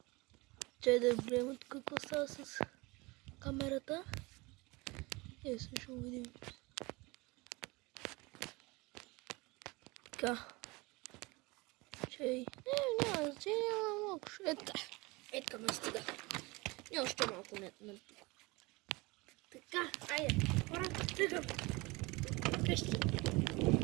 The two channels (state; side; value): quieter; left; 24.3 dB